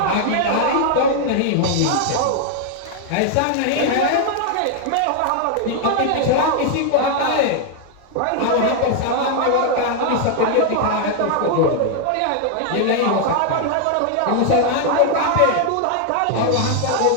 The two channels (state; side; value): different; both; correlation 0.00